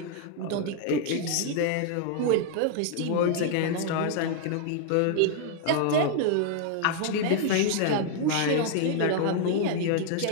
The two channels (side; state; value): both; different; correlation 0.00